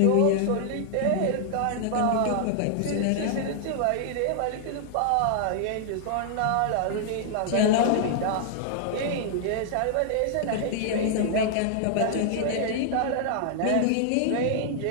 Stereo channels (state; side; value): different; both; correlation 0.00